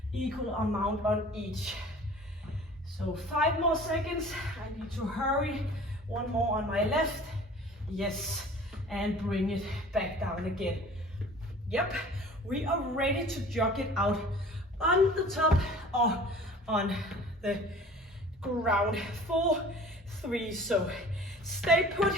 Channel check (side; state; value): both; normal; correlation 0.46